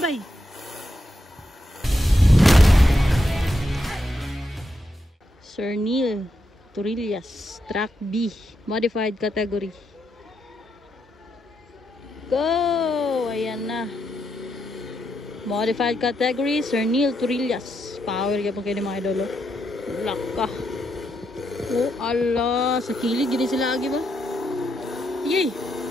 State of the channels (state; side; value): normal; both; correlation 0.82